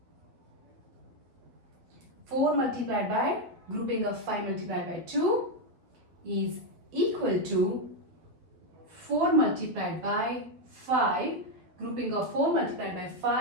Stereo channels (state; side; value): late; left; 12 ms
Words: 4 multiplied by grouping of 5 multiplied by 2 is equal to 4 multiplied by 5 grouping of 4 multiplied by